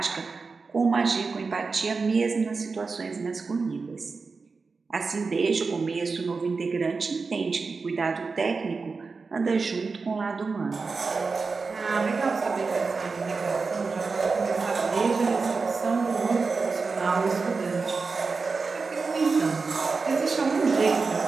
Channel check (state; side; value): quieter; left; 4.4 dB